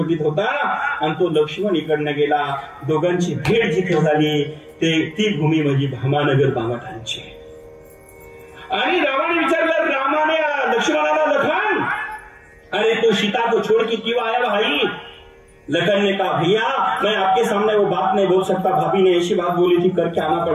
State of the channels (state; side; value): identical; both; correlation 1.00